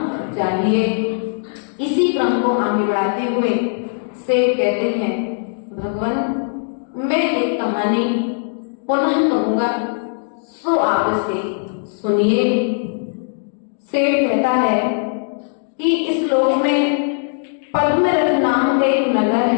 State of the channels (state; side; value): silent; right; digital silence